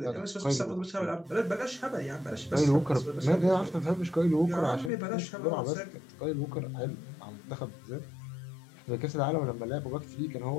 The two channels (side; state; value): right; drops out; at 4.9 s